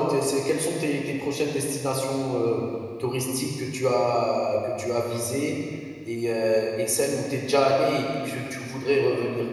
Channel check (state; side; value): identical; both; correlation 1.00